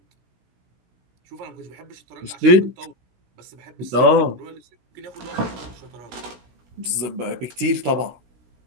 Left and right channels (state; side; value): late; left; 16 ms